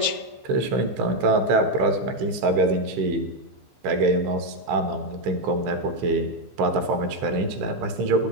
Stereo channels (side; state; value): left; late; 15 ms